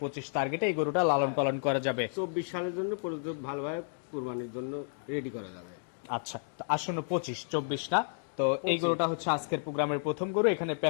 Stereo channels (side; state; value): right; silent; digital silence